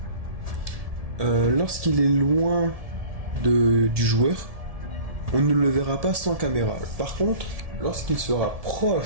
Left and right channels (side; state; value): left; late; 1.7 ms